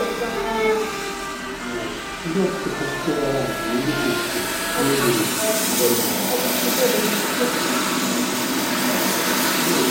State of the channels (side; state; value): both; identical; correlation 1.00